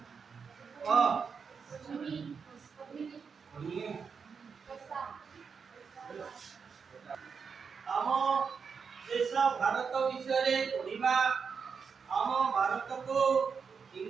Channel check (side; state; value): left; quieter; 5.9 dB